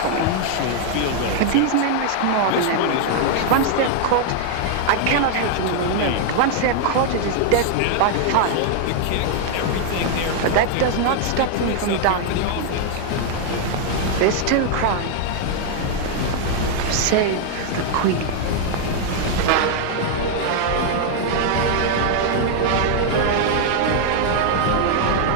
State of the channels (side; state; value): both; different; correlation 0.00